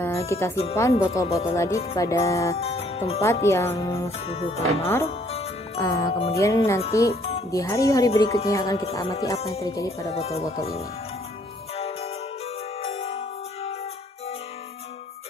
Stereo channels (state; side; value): normal; both; correlation 0.63